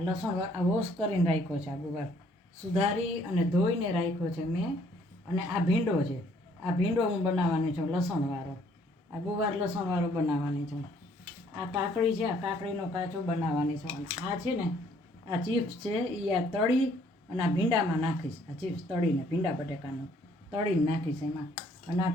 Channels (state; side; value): normal; both; correlation 0.63